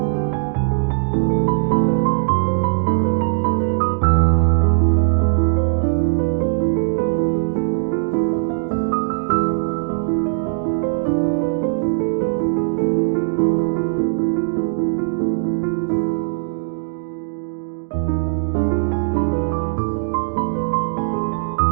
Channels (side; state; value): left; silent; digital silence